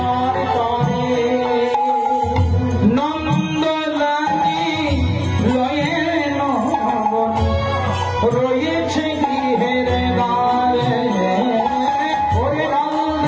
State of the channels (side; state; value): both; identical; correlation 1.00